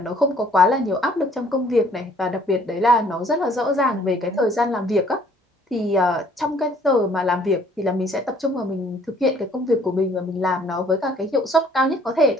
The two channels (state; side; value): normal; both; correlation 0.59